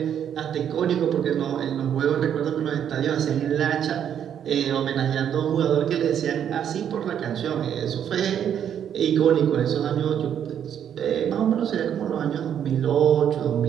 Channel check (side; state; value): left; quieter; 9.1 dB